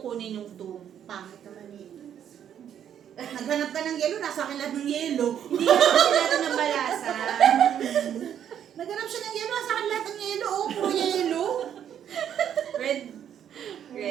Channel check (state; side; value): quieter; left; 9.4 dB